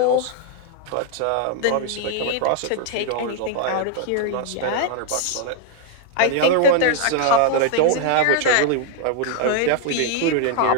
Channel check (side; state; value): both; different; correlation 0.00